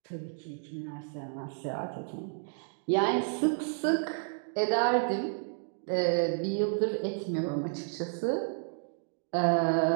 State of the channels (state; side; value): silent; left; digital silence